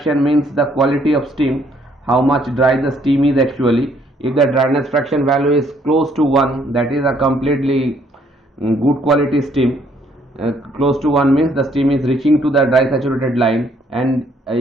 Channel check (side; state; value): both; normal; correlation 0.66